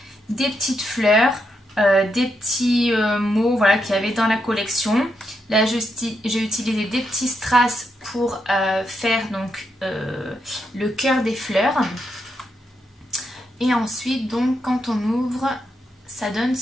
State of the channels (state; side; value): normal; both; correlation 0.82